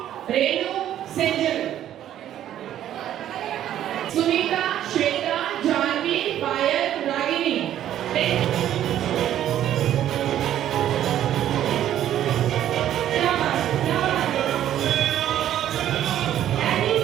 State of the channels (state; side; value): quieter; left; 11.5 dB